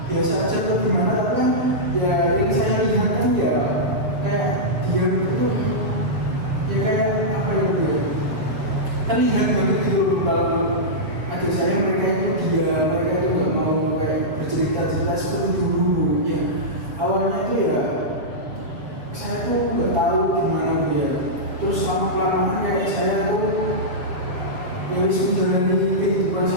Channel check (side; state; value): left; late; 7.5 ms